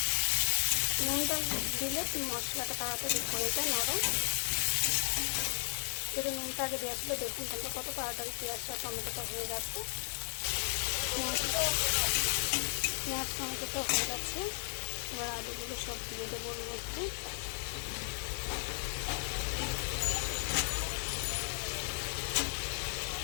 নুনটা দিলে মশলাটা তাড়াতাড়ি হয়ে যায় নরম। যদি নুনটা আগে দেওয়া ছিল, দেখুন তোমরা কত তাড়াতাড়ি পেঁয়াজটা টমেটোটা হয়ে যাচ্ছে। পেঁয়াজ টমেটোটা হয়ে যাচ্ছে। এবার আলুগুলো সব দিয়ে দেবো ওর মধ্যে।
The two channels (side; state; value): right; silent; digital silence